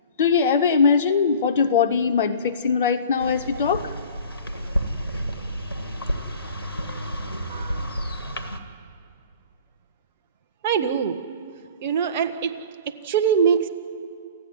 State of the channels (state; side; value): inverted; both; correlation -0.44